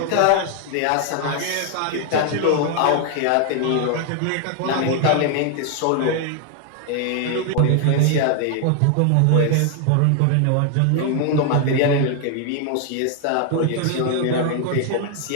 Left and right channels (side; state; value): both; different; correlation 0.00